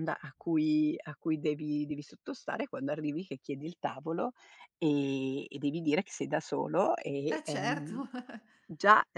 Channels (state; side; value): identical; both; correlation 1.00